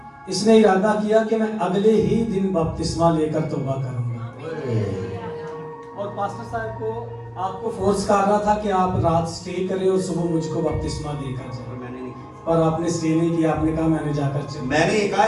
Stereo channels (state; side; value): identical; both; correlation 1.00